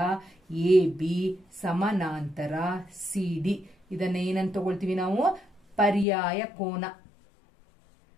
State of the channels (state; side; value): drops out; right; at 6.1 s